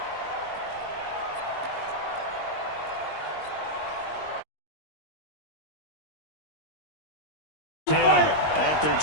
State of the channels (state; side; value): late; right; 20 ms